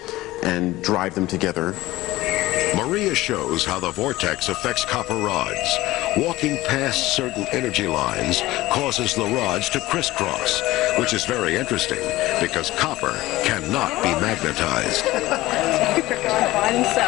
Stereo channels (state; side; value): quieter; right; 17.8 dB